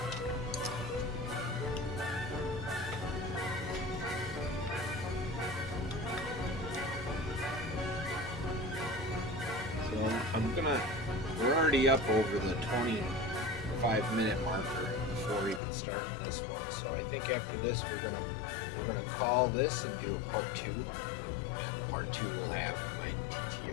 So we're already up over the 25-minute marker before even starting this one. So I think after this we're gonna call this and do a part 2. And part 2 will have my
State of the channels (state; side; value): drops out; right; at 15.6 s